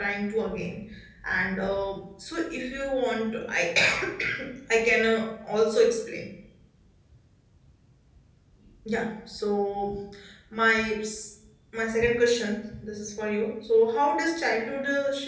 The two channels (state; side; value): identical; both; correlation 1.00